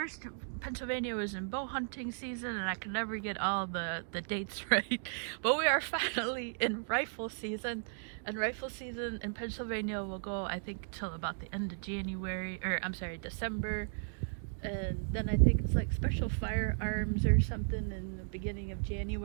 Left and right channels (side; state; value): left; silent; digital silence